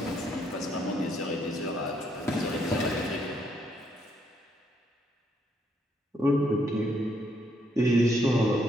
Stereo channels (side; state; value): both; normal; correlation 0.73